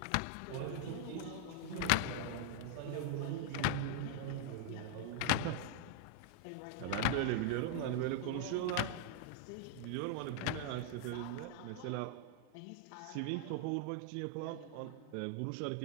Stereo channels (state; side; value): different; both; correlation -0.01